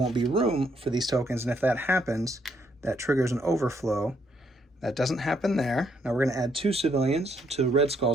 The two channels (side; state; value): both; normal; correlation 0.72